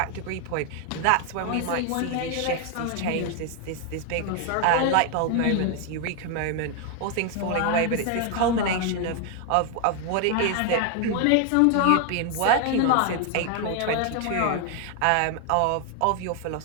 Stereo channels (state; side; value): different; both; correlation 0.00